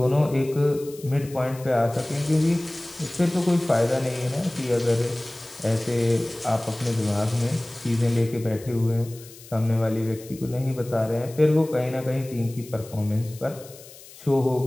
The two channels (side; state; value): left; noise; hiss, 19 dB below the sound